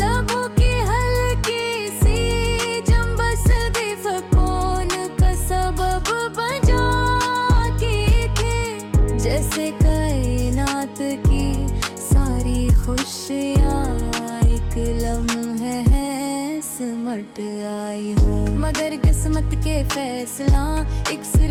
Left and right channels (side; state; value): both; identical; correlation 1.00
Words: की हल्की सी जंबस भी फकोन का सबब बजाती थी, जैसे कायनात की सारी खुशियाँ एक लम्हे है सिमट आई हूँ। मगर किस्मत के फैसला एक